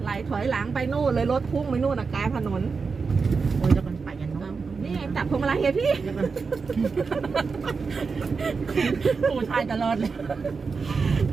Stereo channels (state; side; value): quieter; left; 4.9 dB